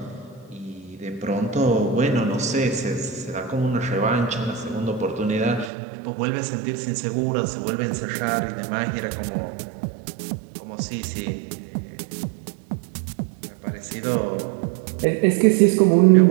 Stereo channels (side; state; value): left; drops out; at 5.7 s